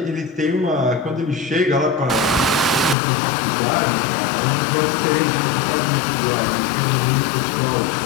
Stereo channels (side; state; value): right; drops out; at 3.0 s